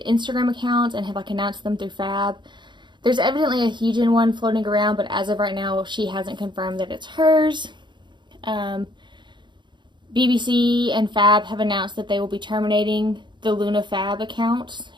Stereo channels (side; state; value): left; late; 0.22 ms